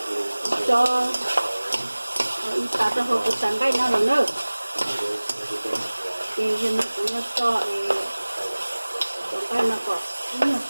Cho ta trong hộp sắn cái nào nữa. noodles and everything. Thì nó cũng nó cho cái nó có nhiều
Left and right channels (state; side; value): inverted; both; correlation -1.00